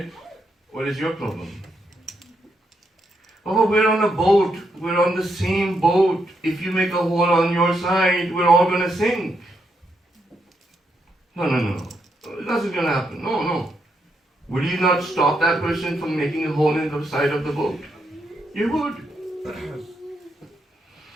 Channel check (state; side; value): normal; both; correlation 0.79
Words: what is your problem? Oh, we're on a boat. We're on the same boat. If you make a hole on your side, we're all going to sink. No. That's not going to happen. No. Would you not stop that person from making a hole in the side of the boat? You would.